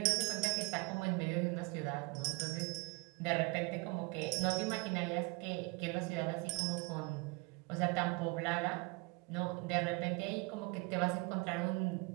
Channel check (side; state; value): left; quieter; 28.8 dB